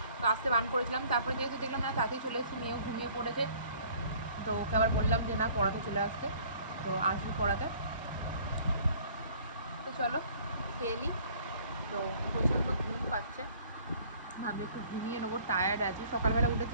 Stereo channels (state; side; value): inverted; both; correlation -0.54